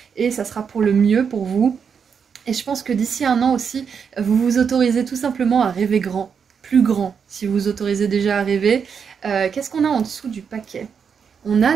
et ça sera pour le mieux pour vous. Et je pense que d'ici un an aussi, vous vous autorisez tout simplement à rêver grand, plus grand, si vous vous autorisez déjà à rêver. Qu'est-ce qu'on a en dessous du paquet? On a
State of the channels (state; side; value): quieter; left; 6.6 dB